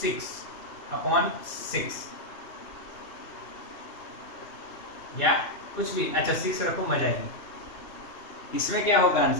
या कुछ भी, अच्छा 6 रखो, मजा आएगी। इसमें क्या होगा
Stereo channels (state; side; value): late; right; 2.7 ms